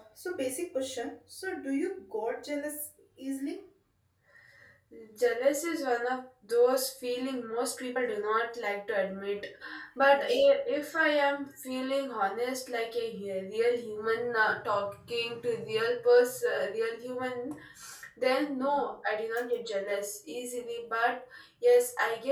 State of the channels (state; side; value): identical; both; correlation 1.00